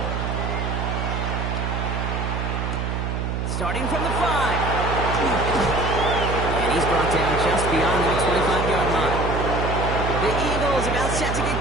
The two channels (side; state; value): right; noise; hum, 2 dB below the sound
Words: Starting from the 5. And he's brought down just beyond that 25-yard line. The Eagles about set to get